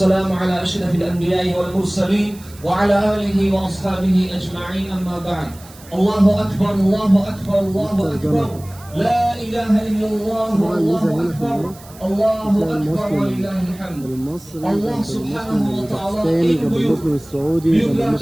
على أشرف الأنبياء والمرسلين وعلى آله وأصحابه أجمعين أما بعد الله أكبر الله أكبر الله أكبر لا إله إلا الله الله أكبر الله أكبر ولله الحمد الله سبحانه وتعالى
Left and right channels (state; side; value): noise; right; hiss, 22 dB below the sound